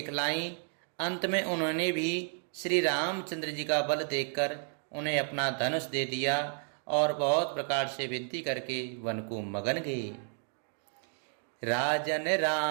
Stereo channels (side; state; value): left; silent; 56 dB below the other